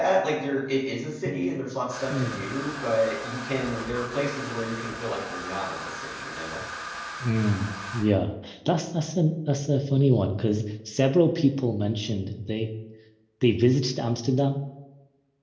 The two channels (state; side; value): identical; both; correlation 1.00